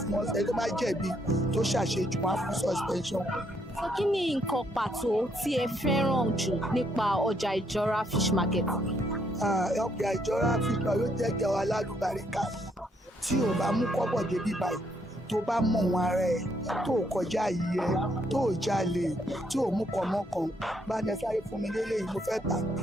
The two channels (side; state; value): both; normal; correlation 0.72